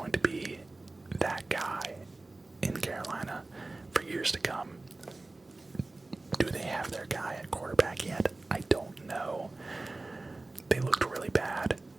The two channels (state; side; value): quieter; left; 3.1 dB